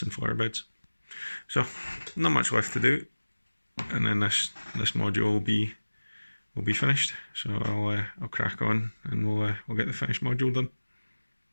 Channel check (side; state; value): both; inverted; correlation -1.00